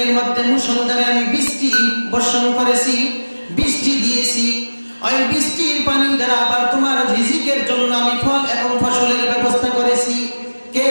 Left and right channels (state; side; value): inverted; both; correlation -1.00